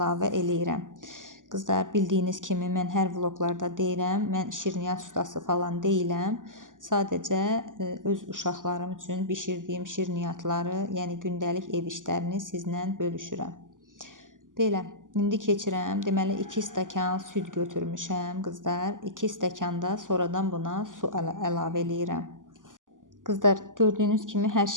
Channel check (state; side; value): late; left; 0.88 ms